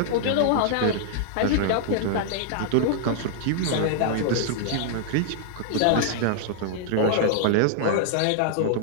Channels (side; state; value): both; different; correlation -0.01